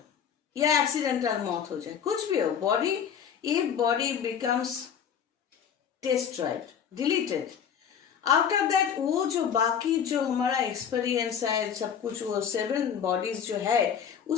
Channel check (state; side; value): quieter; right; 8.0 dB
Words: या एक्सीडेंटल मौत हो जाए, कुछ भी हो, बॉडी, ये body becomes destroyed, deleted. After that वो जो बाकी जो हमारा एक्सपीरियंस है सब कुछ, वो 7 बॉडीज जो है